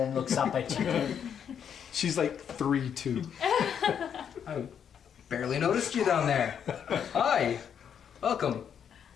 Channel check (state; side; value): quieter; right; 8.2 dB